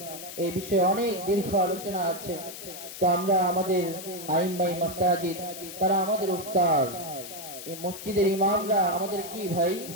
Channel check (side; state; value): left; noise; hiss, 11 dB below the sound